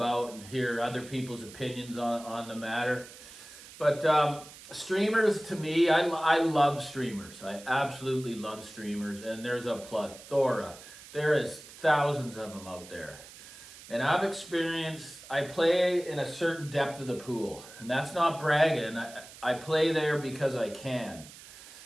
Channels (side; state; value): right; noise; hiss, 17 dB below the sound